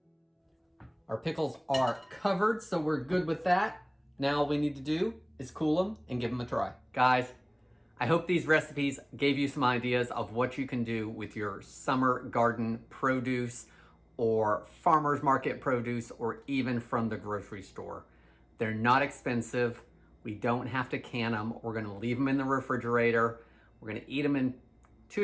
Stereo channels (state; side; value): identical; both; correlation 1.00